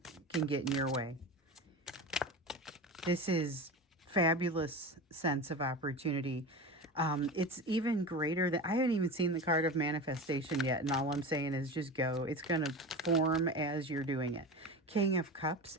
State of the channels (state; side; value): normal; both; correlation 0.28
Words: can get in your way. This is fabulous sense of opportunity. It's even greater than, I haven't even seen the card of manifestation yet, and all I'm saying is just go. It's going to form as you're doing it. King of Cups,